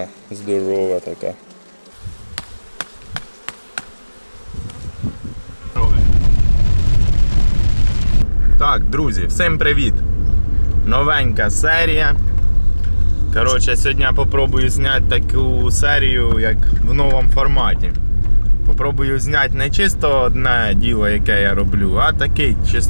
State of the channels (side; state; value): both; inverted; correlation -1.00